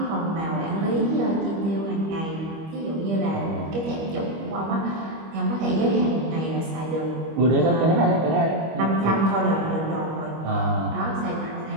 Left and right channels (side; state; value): left; late; 25 ms